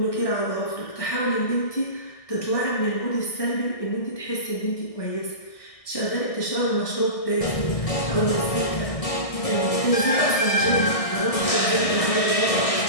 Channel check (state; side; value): late; right; 1.6 ms